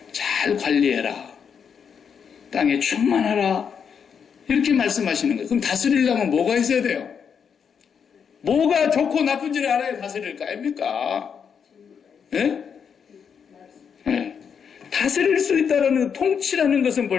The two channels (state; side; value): quieter; right; 7.0 dB